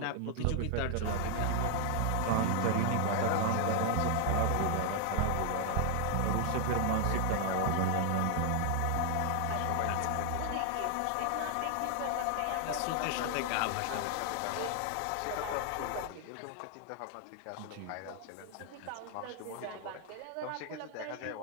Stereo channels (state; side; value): different; both; correlation 0.00